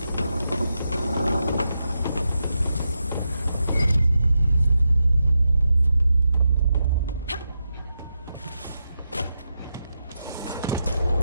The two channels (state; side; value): inverted; both; correlation -0.86